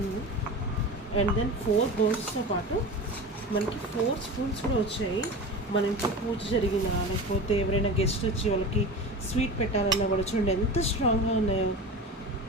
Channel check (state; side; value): normal; both; correlation 0.30